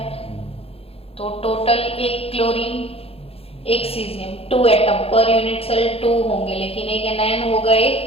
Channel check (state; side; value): late; right; 0.28 ms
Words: तो total 1 chlorine 1 caesium, 2 atom per unit cell 2 होंगे, लेकिन एक एनायन होगा,